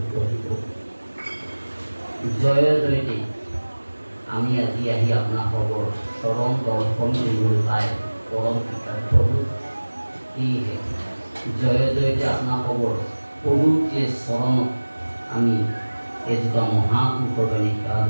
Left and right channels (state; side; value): inverted; both; correlation -1.00